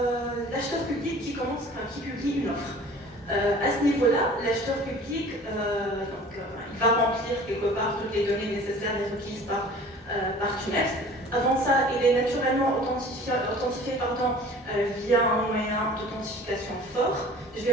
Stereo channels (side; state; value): both; normal; correlation 0.46